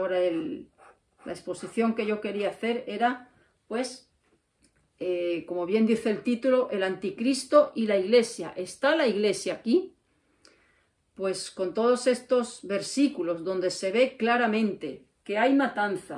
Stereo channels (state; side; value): identical; both; correlation 1.00